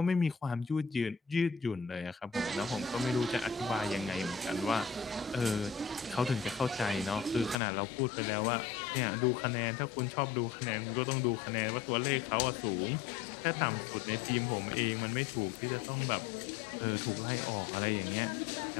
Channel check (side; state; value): right; drops out; at 7.6 s